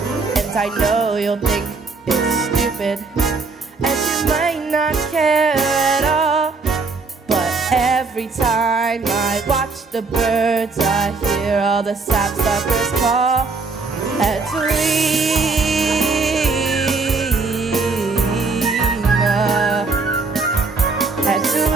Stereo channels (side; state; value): left; quieter; 4.1 dB